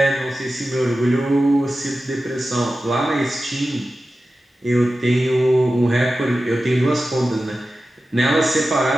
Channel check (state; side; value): normal; both; correlation 0.94